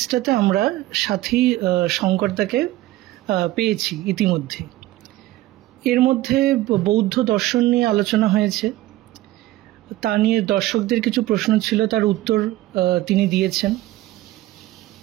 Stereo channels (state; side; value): quieter; left; 16.4 dB